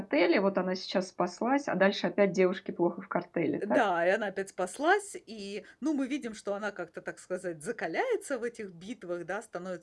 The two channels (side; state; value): both; identical; correlation 1.00